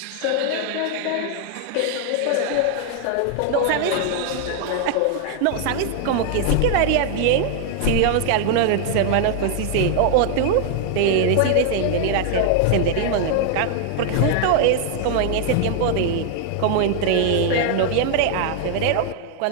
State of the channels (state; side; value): different; both; correlation 0.00